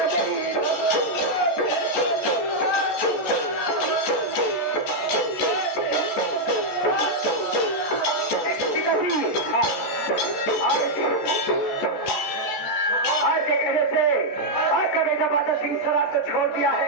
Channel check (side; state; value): right; late; 14 ms